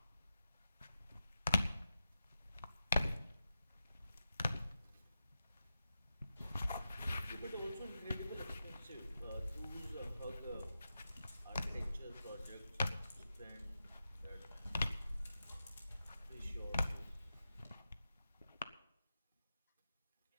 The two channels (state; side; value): inverted; both; correlation -0.89